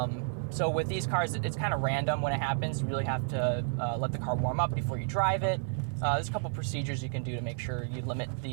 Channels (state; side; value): silent; left; digital silence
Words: So with these cars, it's kind of random when it happens. You really have to let the car warm up before you drive it. There's a couple procedures you can do to make sure you limit